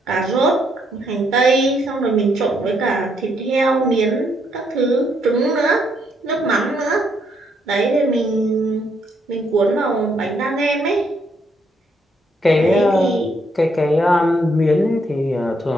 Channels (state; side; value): normal; both; correlation 0.73